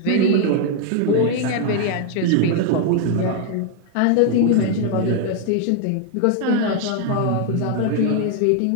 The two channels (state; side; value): different; both; correlation 0.00